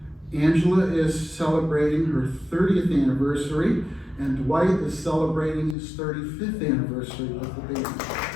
Angela is celebrating her 30th anniversary, and Dwight is celebrating his 35th anniversary with the band.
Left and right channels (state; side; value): drops out; right; at 5.8 s